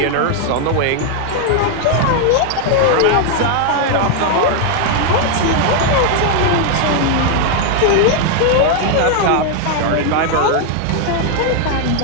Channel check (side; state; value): both; different; correlation 0.00